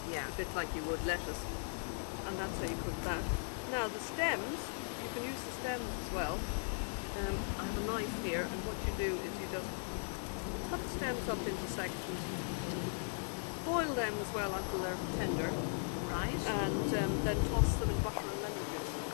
yeah. A bit like you would lettuce. And that's how you cook that. Now the stems, you can use the stems as well. I have a knife here, and what you do is you just cut the stems up into sections, boil them as well until they're tender, right? And then toss them in butter and lemon juice.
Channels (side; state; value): right; silent; digital silence